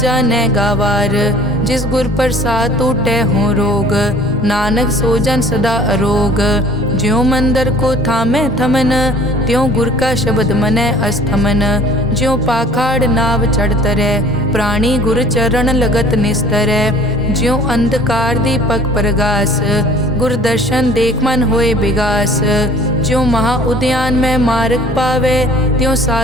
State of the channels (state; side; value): normal; both; correlation 0.50